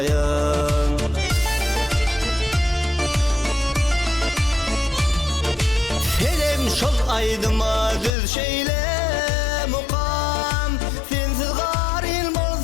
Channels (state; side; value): drops out; right; at 8.1 s